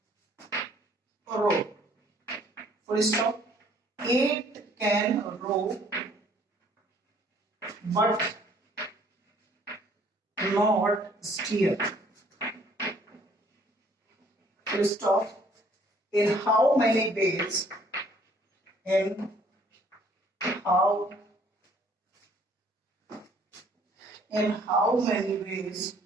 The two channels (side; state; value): both; normal; correlation 0.60